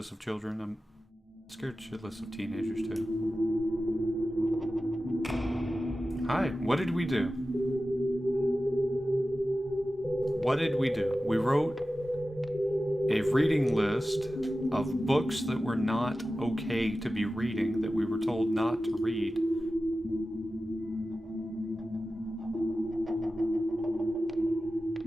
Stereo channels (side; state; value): both; normal; correlation 0.94